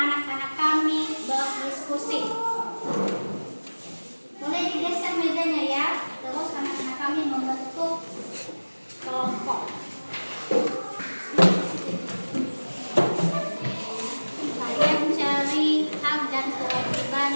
kami berdiskusi. Boleh digeser mejanya ya. Terus anak-anak kami membentuk kelompok. Kalian cari hak dan kewajiban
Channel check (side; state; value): both; inverted; correlation -1.00